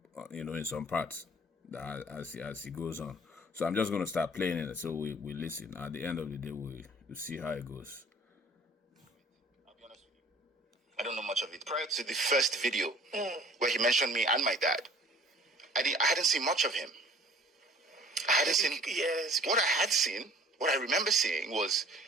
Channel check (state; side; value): normal; both; correlation 0.50